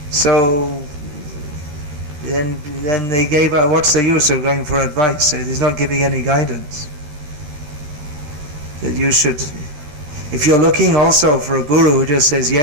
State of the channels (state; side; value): late; left; 13 ms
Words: So then they gave out, what's the use of going for advice? He's not giving any guidance. That you should, if you're looking also for a guru who just says